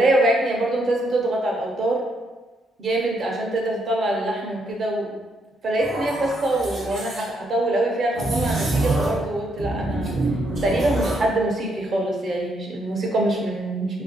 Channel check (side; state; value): both; normal; correlation 0.75